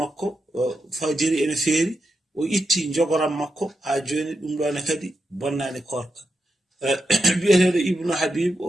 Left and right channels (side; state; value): both; normal; correlation 0.86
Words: fajiri ene feeri o itti jogoram makko ha joni ɗum ɗo ne kadi bonnani korka bi'eteɗo ibnu habib o